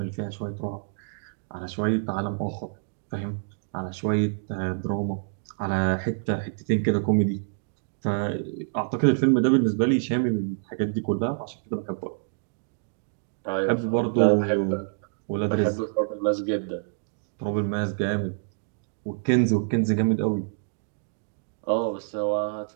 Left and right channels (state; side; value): silent; left; digital silence